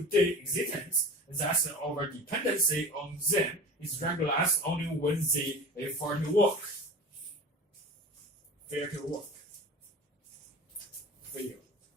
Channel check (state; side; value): normal; both; correlation 0.36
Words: existence. Thus, our dependency on them is regularized only when they fail to work.